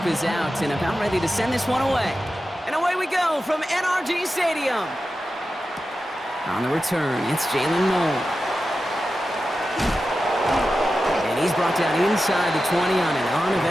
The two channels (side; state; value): both; normal; correlation 0.92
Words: is out and about ready to send this one away. And away we go from NRG Stadium. On the return, it's Jalen Moore. And he's brought down inside the 20 on an